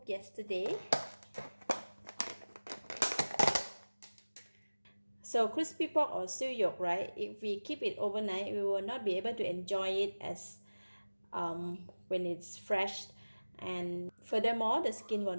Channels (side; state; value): both; inverted; correlation -1.00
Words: yesterday. So crispy pork or siu yok, right? If we keep it overnight, we will not be able to enjoy it as when it's fresh, and furthermore the skin will